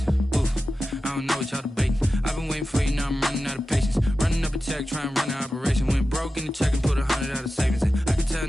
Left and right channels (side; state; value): both; normal; correlation 0.93